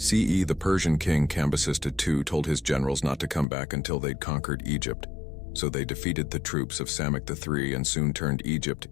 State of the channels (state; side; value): drops out; right; at 3.5 s